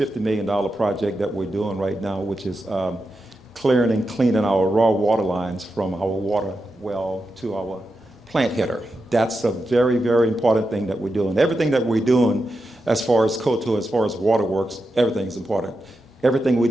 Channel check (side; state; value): both; normal; correlation 0.88